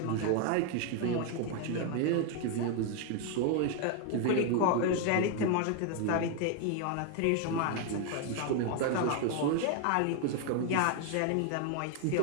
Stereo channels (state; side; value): different; both; correlation 0.01